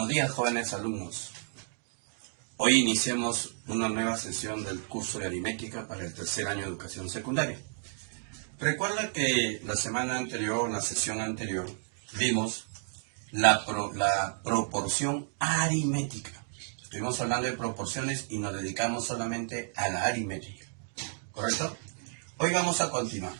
Buenos días, jóvenes alumnos. Hoy iniciamos una nueva sesión del curso de aritmética para el tercer año de educación secundaria. Recuerda que la semana anterior, la sesión anterior, vimos la proporción aritmética. Estuvimos hablando de proporciones y nos dedicamos solamente a la aritmética. ¿Correcto? Hoy vamos a continuar.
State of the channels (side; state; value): left; silent; digital silence